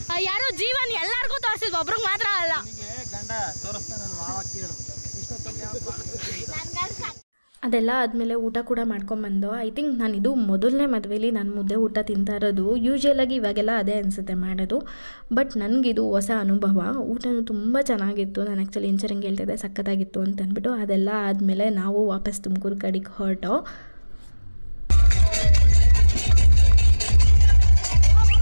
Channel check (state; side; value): inverted; both; correlation -1.00